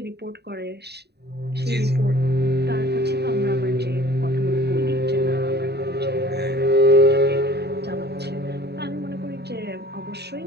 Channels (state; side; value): late; left; 0.48 ms